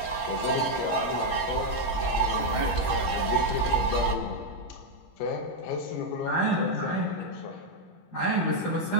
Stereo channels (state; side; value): late; right; 17 ms